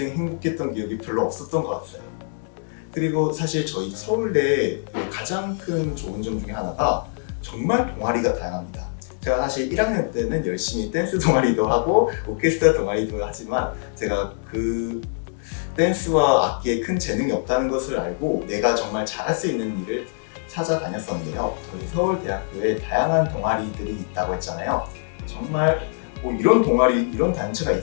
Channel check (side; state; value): right; silent; digital silence